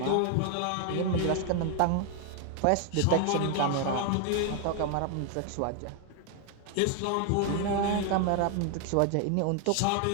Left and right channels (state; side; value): different; both; correlation 0.00